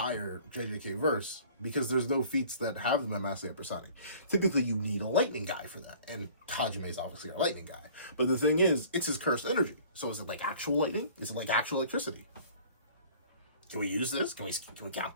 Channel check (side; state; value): both; inverted; correlation -0.50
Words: JJK verse because there's no feats that have them at massively hypersonic. Typically, you need a lightning guy for that, and Hajime is obviously a lightning guy. But the thing is, it's his cursed energy. So is it like actual lightning? Is it like actual electricity? Can we use this? Can we count